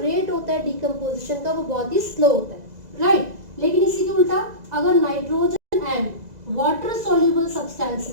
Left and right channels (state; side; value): late; left; 2.0 ms